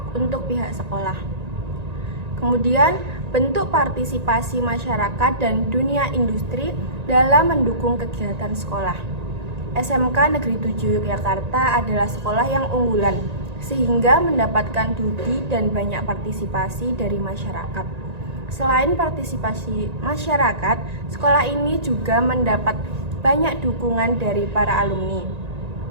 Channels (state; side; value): late; left; 1.9 ms